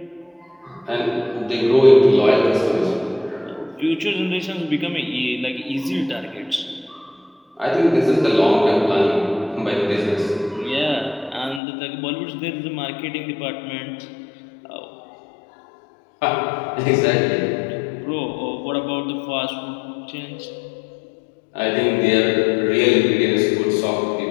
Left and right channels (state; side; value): drops out; right; at 11.6 s